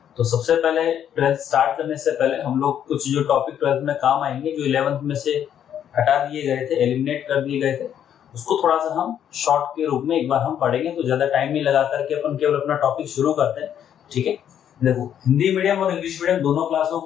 तो सबसे पहले 12th स्टार्ट करने से पहले हम लोग कुछ जो टॉपिक 12th में काम आएंगे, जो 11th में से हटा दिए गए थे, एलिमिनेट कर दिए गए थे, उसको थोड़ा सा हम शॉर्ट के रूप में एक बार हम पढ़ेंगे। तो ज्यादा टाइम नहीं लगा करके अपन केवल अपना टॉपिक शुरू करते हैं। ठीक है, देखो हिंदी मीडियम और इंग्लिश मीडियम दोनों क्लासों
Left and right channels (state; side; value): quieter; right; 9.6 dB